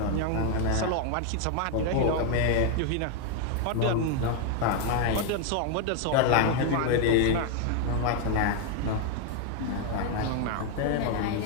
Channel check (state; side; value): different; both; correlation 0.01